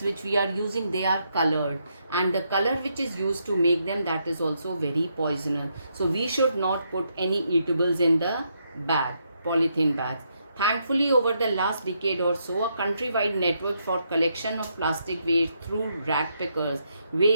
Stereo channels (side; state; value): both; inverted; correlation -0.78